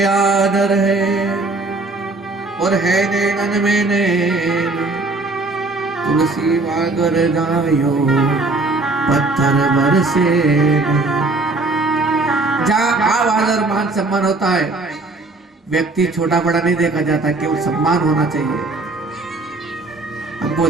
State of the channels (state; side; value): quieter; left; 3.3 dB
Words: आदर है, और है नैनन में नैन, तुलसी वागर जायो, पत्थर बरसे। जहाँ आवाज और मान सम्मान होता है, व्यक्ति छोटा बड़ा नहीं देखा जाता, केवल सम्मान होना चाहिए, हमको